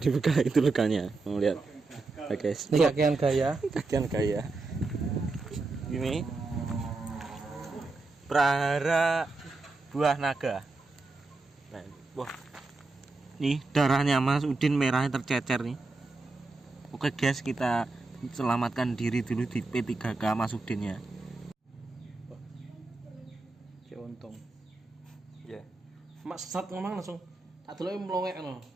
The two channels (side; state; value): left; quieter; 3.5 dB